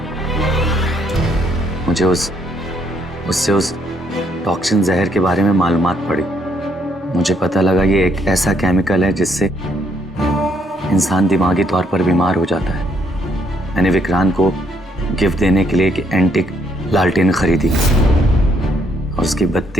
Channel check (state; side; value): normal; both; correlation 0.72